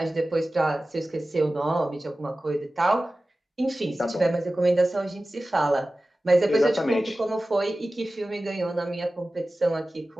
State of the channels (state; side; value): normal; both; correlation 0.96